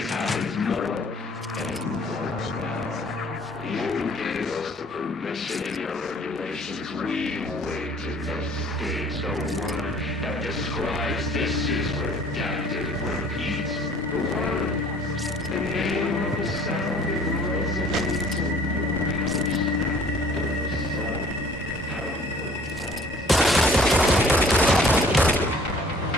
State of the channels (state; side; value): normal; both; correlation 0.54